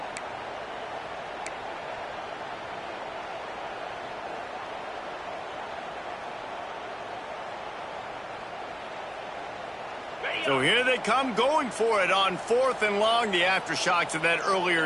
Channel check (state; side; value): identical; both; correlation 1.00